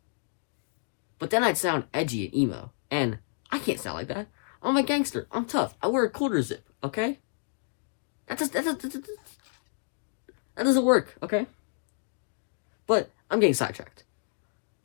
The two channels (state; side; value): silent; right; digital silence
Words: But then I'd sound edgy and emo, and I can't sound like that. I'm a gangster. I'm tough. I wear a quarter zip. Okay, that doesn't work. Okay, but I'm getting sidetracked.